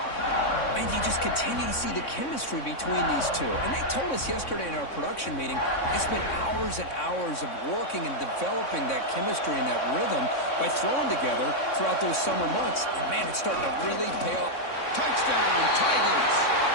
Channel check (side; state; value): right; late; 3.6 ms